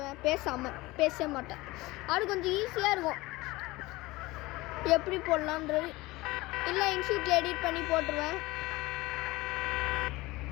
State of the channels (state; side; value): quieter; right; 20.6 dB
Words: பேச மாட்டேன். அது கொஞ்சம் ஈஸியாக இருக்கும் எப்படி போடலான்றது. இல்லை இன்ஷூட்டில் எடிட் பண்ணி போட்டுருவேன்.